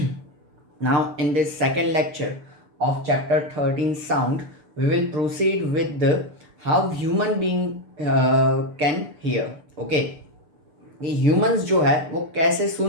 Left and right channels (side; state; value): left; late; 6.8 ms